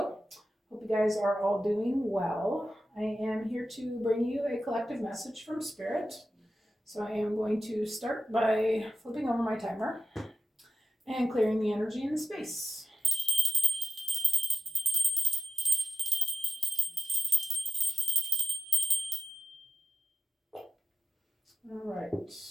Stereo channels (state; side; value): normal; both; correlation 0.87